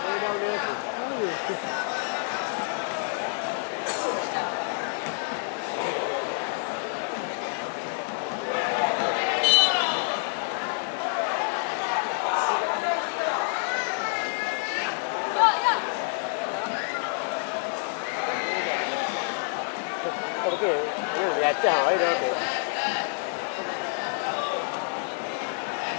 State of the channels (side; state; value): right; silent; 60 dB below the other